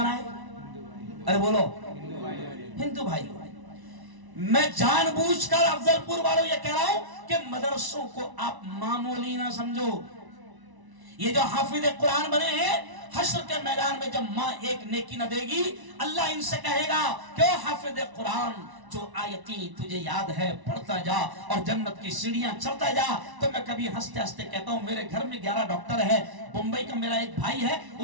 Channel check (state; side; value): late; left; 1.0 ms